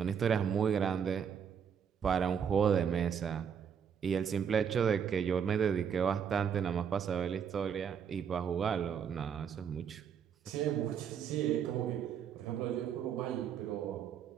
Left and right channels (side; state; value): left; quieter; 7.6 dB